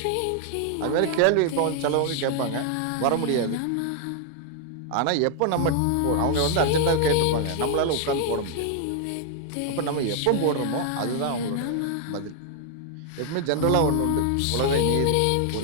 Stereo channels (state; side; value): different; both; correlation 0.00